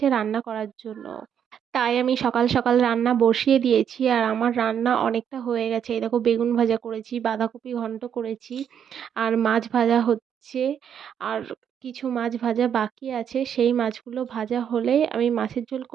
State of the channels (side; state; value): left; quieter; 8.5 dB